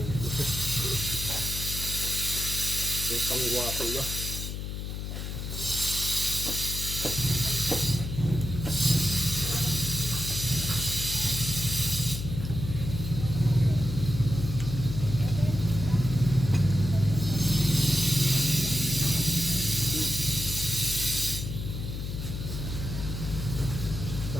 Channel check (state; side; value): noise; left; hum, 5 dB below the sound